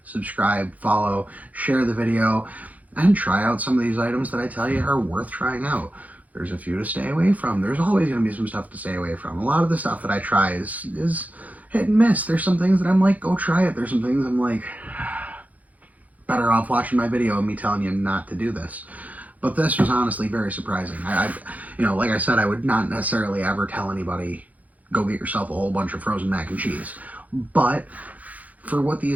subscribe, follow, share the video, and try out some of these items that I tell you are worth trying out. There's a few to stay away from. There's always going to be some stuff to stay away from. A lot of the stuff that I try is hit and miss. There's some things that I'm like, go try it. There's some things I'm like, better off watching my video and me telling you not to do this. But this was honestly very surprising. You know, like I said, I would not necessarily ever tell anybody, go get yourself a whole bunch of frozen mac and cheese. But for what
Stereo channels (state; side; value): late; left; 0.076 ms